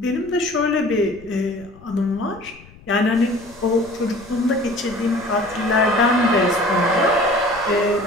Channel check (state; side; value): noise; left; rumble, 24 dB below the sound